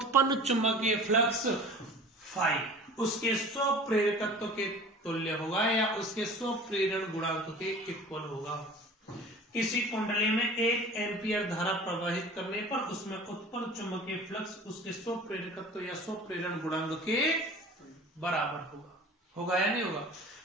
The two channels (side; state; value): both; normal; correlation 0.41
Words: चुंबकीय फ्लक्स फाई उसके स्वप्रेरकत्व के तुल्य होगा या उसके स्वप्रेरण गुणांक के इक्वल होगा। किसी कुंडली में 1 एम्पियर धारा प्रवाहित करने पर उसमें उत्पन्न चुंबकीय फ्लक्स उसके स्वप्रेरकत्व या स्वप्रेरण गुणांक के बराबर होगा। होगा या नहीं होगा?